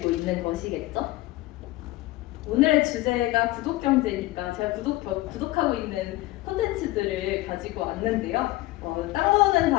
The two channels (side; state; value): right; quieter; 18.4 dB